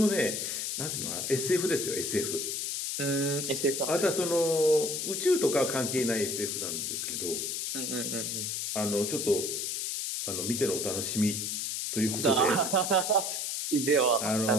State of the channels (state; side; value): noise; left; hiss, 2 dB below the sound